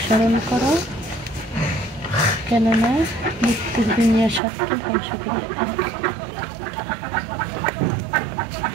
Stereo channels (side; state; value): left; drops out; at 4.4 s